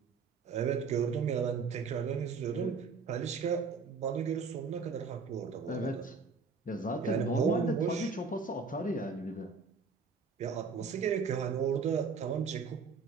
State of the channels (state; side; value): quieter; left; 5.0 dB